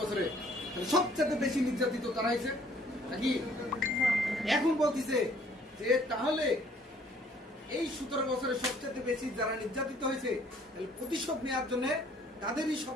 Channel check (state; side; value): normal; both; correlation 0.60